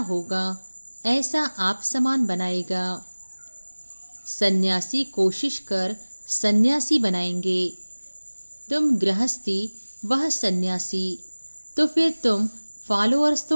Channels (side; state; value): both; inverted; correlation -1.00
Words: होगा ऐसा आप समान बनाएगा। सन्यासी कोशिश कर सन्यासी बनाएंगे। तुम गृहस्थी, वह सन्यासी, तो फिर तुम फॉलोअर्स